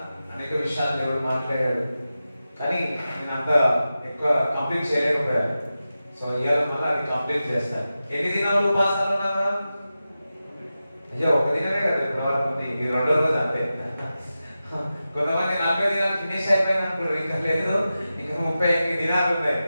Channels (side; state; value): both; inverted; correlation -0.93